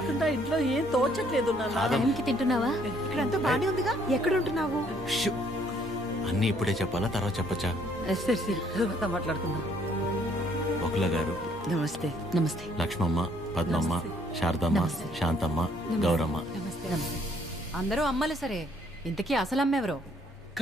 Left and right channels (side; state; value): both; normal; correlation 0.65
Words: ఇంట్లో ఏం తోచట్లేదు. టైంకి తింటున్నావా? ఇక్కడంతా బానే ఉందిగా. ఎక్కడ ఉంటున్నావు? అన్నీ ఇప్పుడే చెప్పాలా, తర్వాత చెప్పచ్చా? సరే సరే, తర్వాత మాట్లాడుకుందాం. బకుల గారు నమస్తే. నమస్తే. లక్ష్మమ్మ, పద్మమ్మ, శారదమ్మ, శాంతమ్మ, గౌరమ్మ. అందరూ అమ్మలు సరే, ఇంతకీ అసలు అమ్మెవరో?